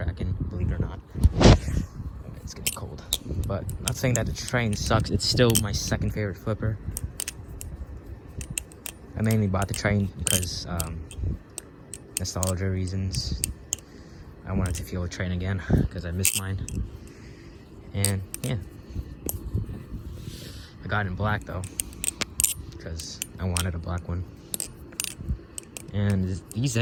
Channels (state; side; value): identical; both; correlation 1.00